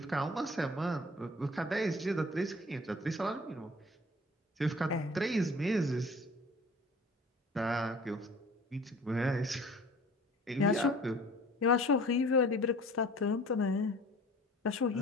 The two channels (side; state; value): both; normal; correlation 0.47